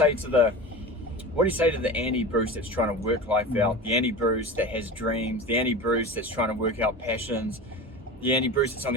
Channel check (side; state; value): both; normal; correlation 0.31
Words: to the Andy Bruce that's trying to work life out, the Andy Bruce that has dreams, the Andy Bruce that's trying to work out passions, the Andy Bruce that's on